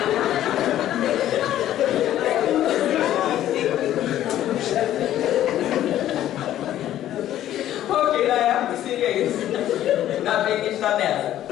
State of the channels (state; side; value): quieter; right; 12.4 dB